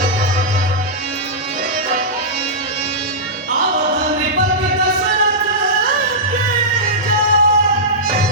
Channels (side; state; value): both; normal; correlation -0.13